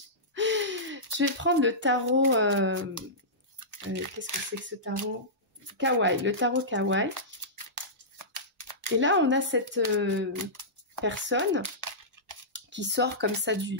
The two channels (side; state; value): both; normal; correlation -0.16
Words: Je vais prendre le tarot. Qu'est-ce que c'est que ce tarot? Kawaii, le tarot Kawaii. Et là, on a cette personne qui sort comme ça